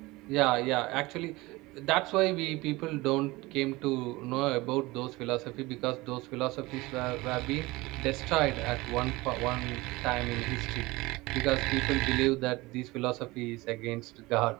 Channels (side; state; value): left; quieter; 21.3 dB